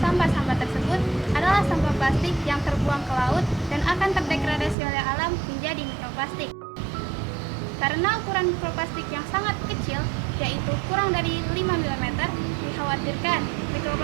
tersebut adalah sampah plastik yang terbuang ke laut dan akan terdegradasi oleh alam menjadi mikroplastik. Karena ukuran mikroplastik yang sangat kecil, yaitu kurang dari 5 mm, dikhawatirkan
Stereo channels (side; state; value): left; drops out; at 4.8 s